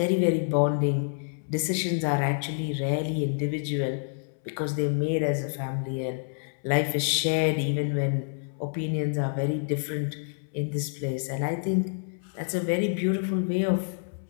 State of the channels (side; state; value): right; silent; 59 dB below the other